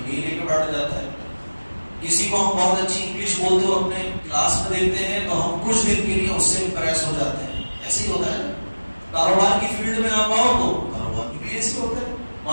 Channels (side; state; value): both; inverted; correlation -1.00